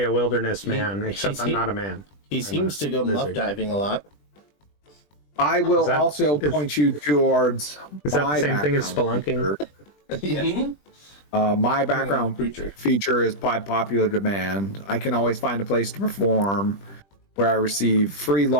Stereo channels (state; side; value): late; right; 20 ms